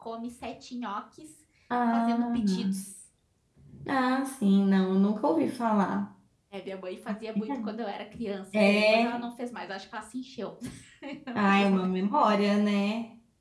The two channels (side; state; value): both; identical; correlation 1.00